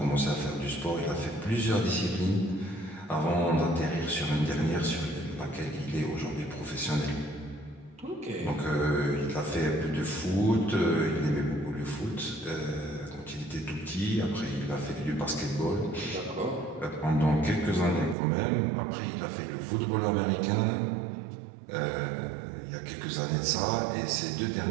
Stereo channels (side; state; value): left; drops out; at 18.2 s